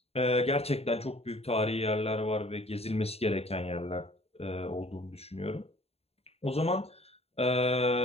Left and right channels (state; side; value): late; right; 0.29 ms